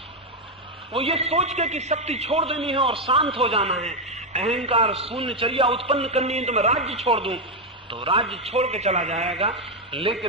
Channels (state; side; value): normal; both; correlation 0.04